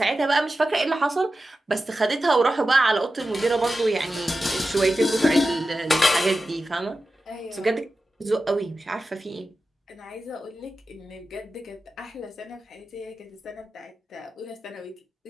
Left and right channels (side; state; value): both; normal; correlation 0.93